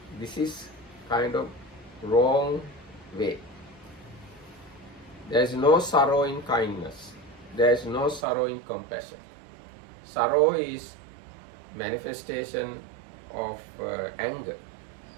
This is kind of wrong way. There is no sorrow in kindness. There is no sorrow in compassion. Sorrow is manifestation of anger.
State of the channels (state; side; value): drops out; left; at 8.2 s